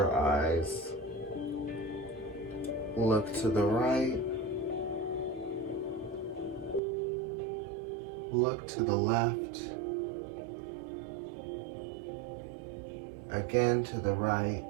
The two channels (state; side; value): drops out; left; at 6.8 s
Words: eyes. Look to the right. Look to the left. Again to the right.